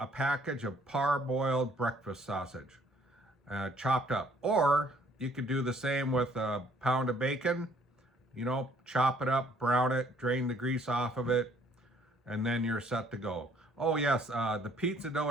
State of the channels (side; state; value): both; normal; correlation 0.62